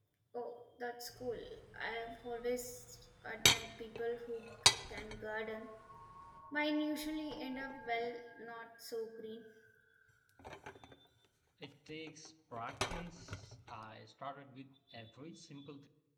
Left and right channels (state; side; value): identical; both; correlation 1.00